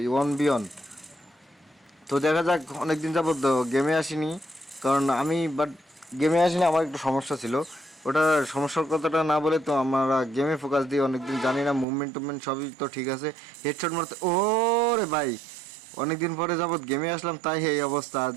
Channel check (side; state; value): left; drops out; at 11.9 s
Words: 1v1। তো দেখা যাক, অনেকদিন যাবত গেমে আসিনি, কারণ আমি গেমে আসিনি, আমার একটু সমস্যা ছিল। ওটা সমস্যার কথাটা না বলে তো আমরা গেমে ফোকাস দিই অনেকদিন, জানি না মুভমেন্ট টুভমেন্ট সবই তো ঠিক আছে। হেডশট মারতে ও রে ভাই, অনেকদিন পরে যাবত গেমে আসলাম তাই এই অবস্থা। আর